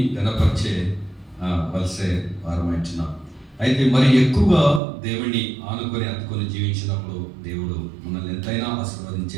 గణపరిచే వలసే వారమైంటున్నాం. అయితే మరి ఎక్కువగా దేవుని ఆనుకొని అత్తుకొని జీవించినప్పుడు దేవుడు మనల్ని ఎంతైనా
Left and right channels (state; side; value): drops out; left; at 4.8 s